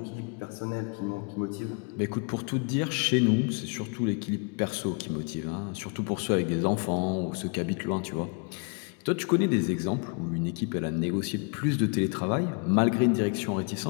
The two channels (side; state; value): right; quieter; 35.8 dB